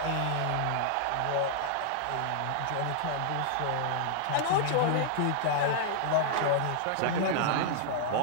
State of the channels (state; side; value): different; both; correlation -0.01